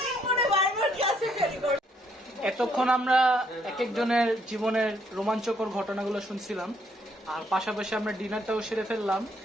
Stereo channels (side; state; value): both; normal; correlation 0.70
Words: মনে বারবার ক্লাসে ফেল করে। এতক্ষণ আমরা এক একজনের জীবনের রোমাঞ্চকর ঘটনাগুলো শুনছিলাম, আর পাশাপাশি আমরা ডিনারটাও সেরে ফেললাম।